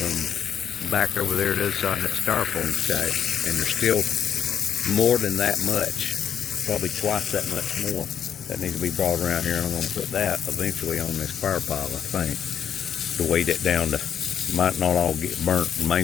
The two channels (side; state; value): right; quieter; 8.5 dB